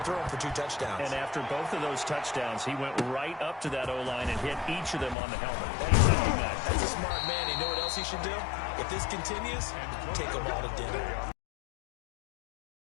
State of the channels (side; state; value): right; drops out; at 5.2 s